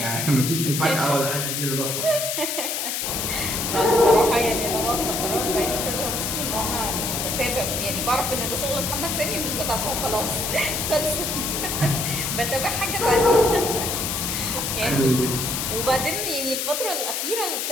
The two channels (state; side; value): noise; left; hiss, 1 dB below the sound